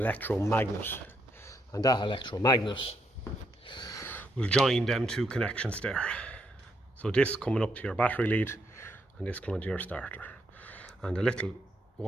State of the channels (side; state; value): both; normal; correlation 0.77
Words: and that electromagnet will join them two connections there. So this coming up to your battery lead, and this coming to your starter, and the little